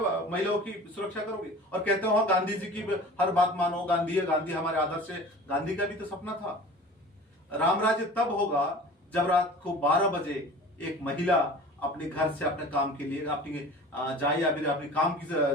महिलाओं की सुरक्षा करोगे और कहते हो गांधी जी की हर बात मानो, गांधी है, गांधी हमारे आदर्श है। गांधी का भी तो सपना था। राम राज्य तब होगा जब रात को 12 बजे एक महिला अपने घर से अपने काम के लिए अपनी जाए या फिर अपनी काम की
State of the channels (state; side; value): normal; both; correlation 0.40